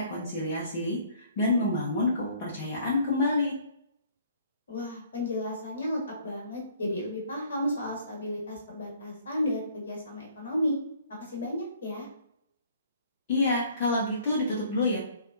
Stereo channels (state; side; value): inverted; both; correlation -0.57